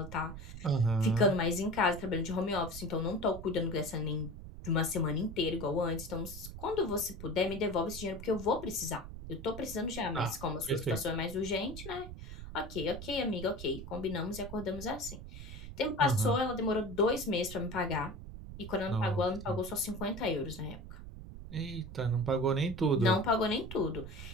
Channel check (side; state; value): right; noise; rumble, 11 dB below the sound